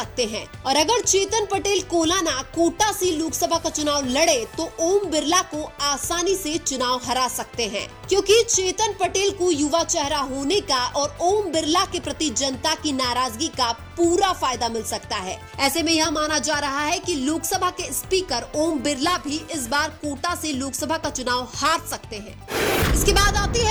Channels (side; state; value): both; identical; correlation 1.00